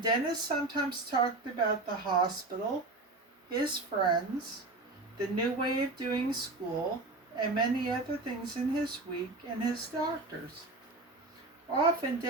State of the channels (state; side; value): quieter; left; 3.2 dB